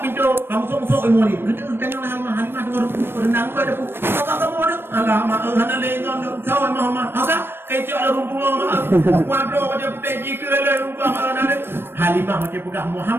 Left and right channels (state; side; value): late; left; 0.10 ms